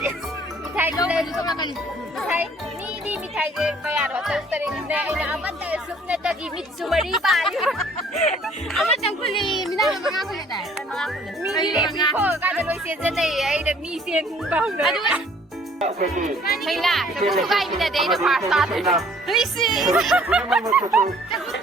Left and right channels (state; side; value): normal; both; correlation 0.57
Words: ꯃꯤꯊꯥꯏ ꯃꯤꯊꯥꯏ ꯃꯤꯗꯤ ꯃꯤꯊꯥꯏꯁꯦ ꯀꯌꯥꯅꯣ ꯇꯔꯨꯛ ꯇꯔꯦꯠꯅꯦ ꯑꯩꯅ ꯑꯃꯠꯇ ꯁꯨꯞꯅꯇꯒꯤ ꯃꯤꯠꯁꯨ ꯃꯔꯤ ꯄꯥꯜꯂꯤ ꯑꯃꯇꯪ ꯈꯨꯜꯂꯤ ꯃꯤꯅꯥꯏ ꯃꯉꯥ ꯈꯨꯜꯂꯦꯗꯥꯏ ꯃꯉꯥ ꯈꯨꯜꯂꯦ ꯃꯤꯗꯤ ꯃꯤ ꯈꯣꯡꯉꯀꯥꯟꯗ ꯂꯣꯏ ꯆꯦꯟꯖꯟꯅꯩꯌꯦ ꯑꯩꯅ ꯃꯤ ꯆꯦꯟꯕ ꯍꯧꯅ ꯑꯗꯨꯒ ꯍꯩꯅ ꯆꯐꯨ ꯊꯨꯒꯥꯏꯃꯤꯟꯅꯗꯦ ꯑꯩꯅ ꯐꯥꯔꯁ ꯇꯥꯗꯣꯏꯅꯦ ꯂꯨꯏꯁꯤ